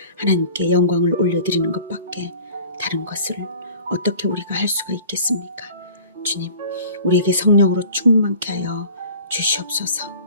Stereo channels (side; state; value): both; inverted; correlation -0.45